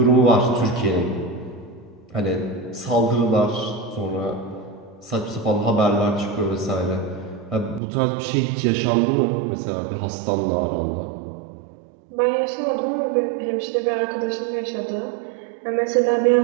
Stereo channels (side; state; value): left; drops out; at 7.8 s